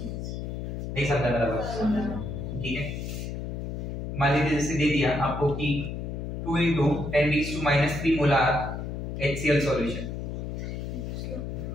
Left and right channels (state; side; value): noise; left; hum, 5 dB below the sound